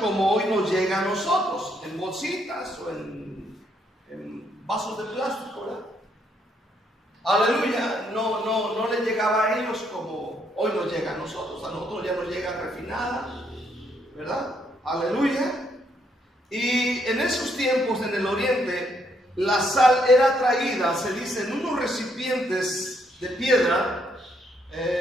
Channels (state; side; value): normal; both; correlation 0.73